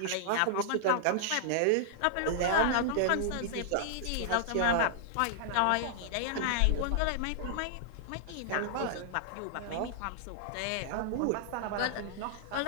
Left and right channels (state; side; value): different; both; correlation -0.01